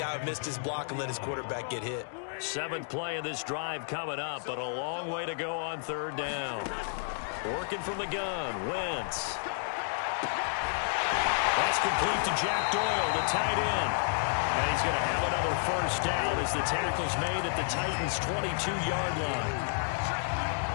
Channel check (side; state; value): right; silent; digital silence